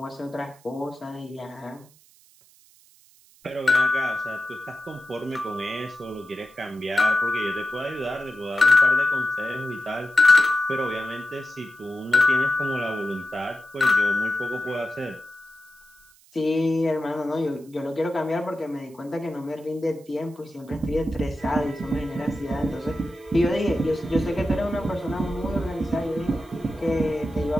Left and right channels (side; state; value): right; noise; hiss, 28 dB below the sound